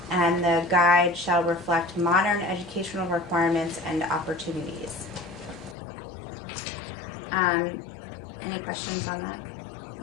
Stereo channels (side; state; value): right; drops out; at 5.8 s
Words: And the guide shall reflect modern educational requirements and opportunities. Any questions on that?